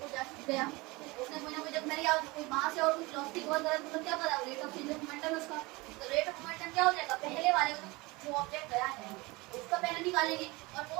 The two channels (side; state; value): left; quieter; 23.6 dB